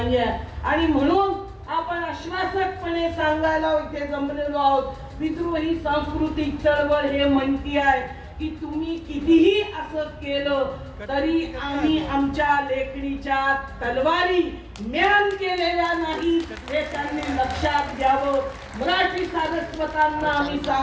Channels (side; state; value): both; identical; correlation 1.00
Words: आणि म्हणून आपण आश्वासकपणे सांगायला इथे जमलेलो आहोत, विद्रोही सांस्कृतिक चळवळ हे म्हणती आहे की तुम्ही कितीही असं केलं तरी आम्ही आमच्या लेखणीच्या तलवारी म्यान केलेल्या नाही हे त्यांनी लक्षात घ्यावं. मराठी सारस्वतांना आम्ही